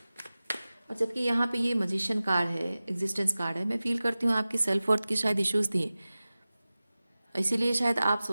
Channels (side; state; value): both; inverted; correlation -0.97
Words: और जबकि यहाँ पे ये मजिशियन कार्ड है, एग्जिस्टेंस कार्ड है, मैं फील करती हूँ आपकी सेल्फ वर्थ की शायद इश्यूज थी, इसीलिए शायद आप